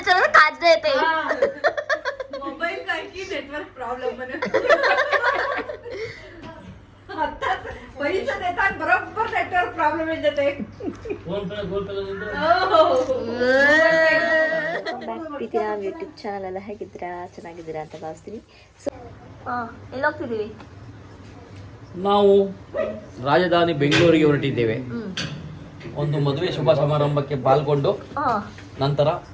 काच देते मोबाईल काय की नेटवर्क प्रॉब्लेम म्हणे आताच पैसे देतात बरोबर नेटवर्क प्रॉब्लेम येते ಪ್ರೀತಿಯ ಯೂಟ್ಯೂಬ್ ಚಾನಲ್ ಎಲ್ಲ ಹೇಗಿದ್ದೀರಾ ಚೆನ್ನಾಗಿದ್ದೀರಾ ಅಂತ ಭಾವಿಸ್ತೀನಿ. ಸೊ ಎಲ್ಲಿ ಹೋಗ್ತಿದ್ದೀವಿ ನಾವು ರಾಜಧಾನಿ ಬೆಂಗಳೂರಿಗೆ ಹೊರಟಿದ್ದೇವೆ. ಒಂದು ಮದುವೆ ಶುಭ ಸಮಾರಂಭಕ್ಕೆ ಪಾಲ್ಗೊಂಡು ನಂತರ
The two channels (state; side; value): identical; both; correlation 1.00